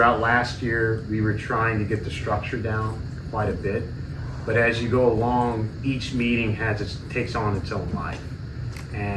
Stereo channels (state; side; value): identical; both; correlation 1.00